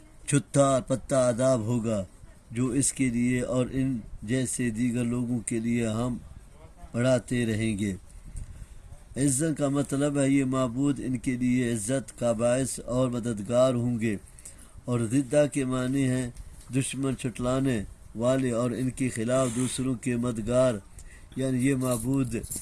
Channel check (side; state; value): both; identical; correlation 1.00